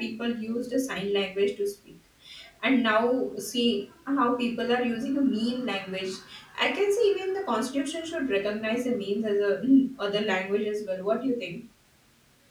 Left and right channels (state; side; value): identical; both; correlation 1.00